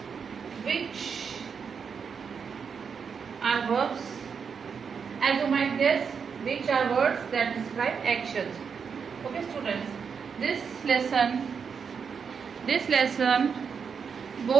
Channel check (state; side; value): quieter; left; 6.3 dB